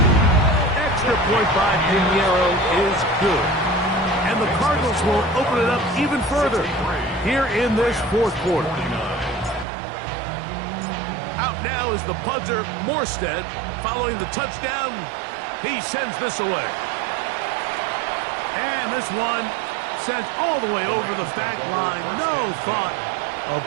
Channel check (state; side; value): drops out; left; at 9.7 s